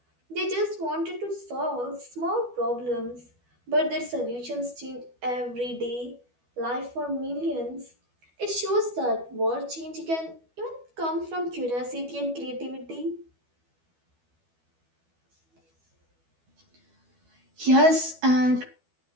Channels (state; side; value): late; left; 12 ms